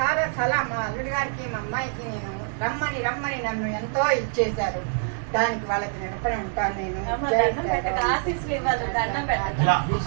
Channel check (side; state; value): left; silent; 60 dB below the other